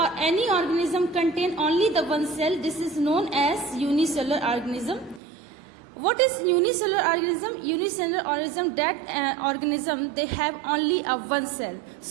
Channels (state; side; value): drops out; left; at 5.2 s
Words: any organism contain only the one cell, this is known as unicellular organism. What is unicellular organism? Unicellular organism, that organism they have only a one cell,